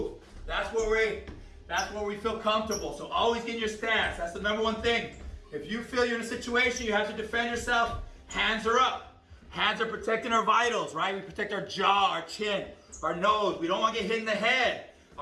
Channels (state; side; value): identical; both; correlation 1.00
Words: That's where we feel comfortable. So always get in your stance. That's the number one thing. If you feel you're in a situation, you have to defend yourself, hands are up. Hands are protecting our vitals, right? We protect our jaw, our chin, our nose. We don't want to get hit in the head.